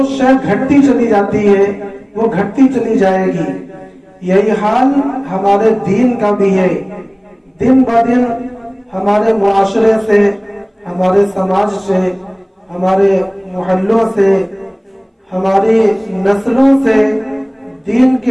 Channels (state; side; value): identical; both; correlation 1.00